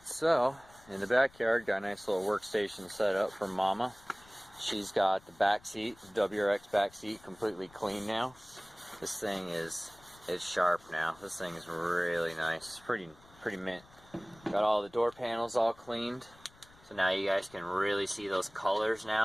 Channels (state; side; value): noise; left; rumble, 26 dB below the sound